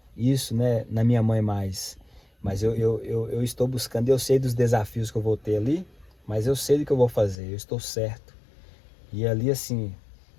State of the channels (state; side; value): drops out; right; at 7.4 s